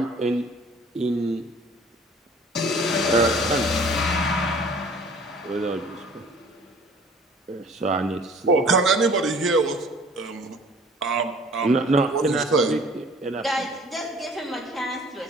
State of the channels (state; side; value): normal; both; correlation 0.50